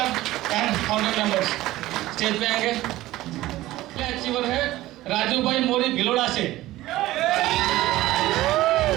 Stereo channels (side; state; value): left; quieter; 16.5 dB